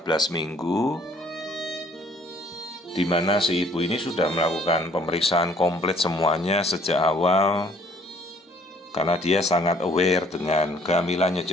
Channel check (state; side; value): normal; both; correlation 0.59